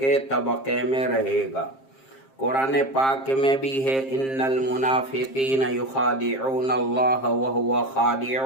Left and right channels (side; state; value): right; late; 7.5 ms